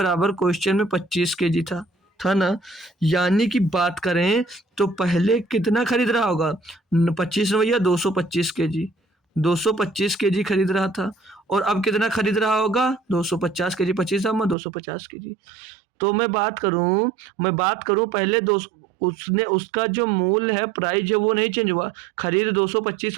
क्वेश्चन में 25 kg था। था ना। यानी कि बात करें तो पहले कितना खरीद रहा होगा, 25 में भैया 225 केजी, 225 केजी खरीद रहा था। और अब कितना खरीद रहा होगा, 250 केजी, 25 में 250 केजी। तो मैं बात करूं पहले दो, उसने उसका जो मूल्य है, प्राइस है, वो नहीं चेंज हुआ। खरीद 225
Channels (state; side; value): drops out; left; at 14.6 s